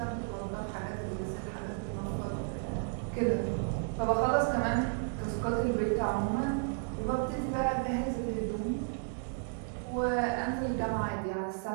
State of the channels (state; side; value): silent; left; 56 dB below the other